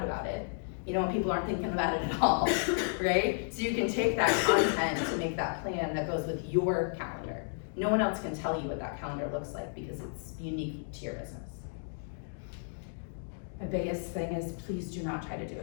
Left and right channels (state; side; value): silent; right; digital silence